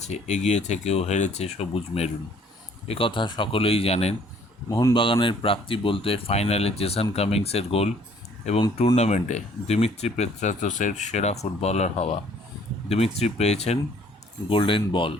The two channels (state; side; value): normal; both; correlation 0.59